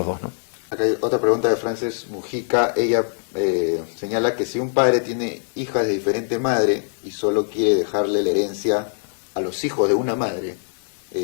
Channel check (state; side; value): silent; right; digital silence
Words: dos, ¿no? Acá hay otra pregunta de Frances Mujica. Ella señala que si un padre tiene hijas de diferente madre y solo quiere dejarle la herencia a los hijos de una madre,